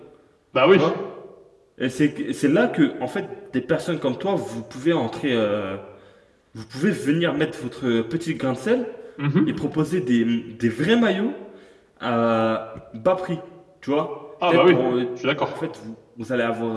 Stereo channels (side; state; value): both; identical; correlation 1.00